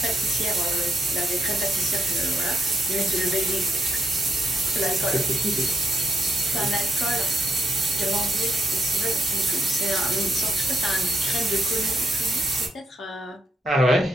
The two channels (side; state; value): both; normal; correlation 0.80